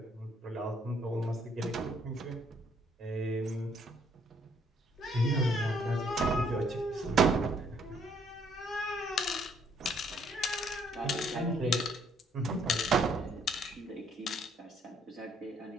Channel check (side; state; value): both; normal; correlation 0.66